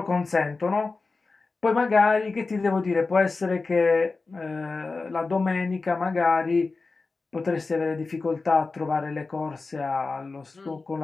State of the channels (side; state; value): right; quieter; 3.9 dB